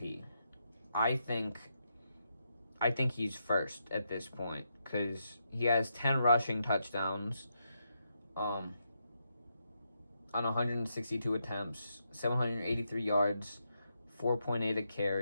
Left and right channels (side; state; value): both; inverted; correlation -0.82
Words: I think I think he's first at this point because he has 10 rushing touchdowns on 162 attempts, 783 yards, 4.8 a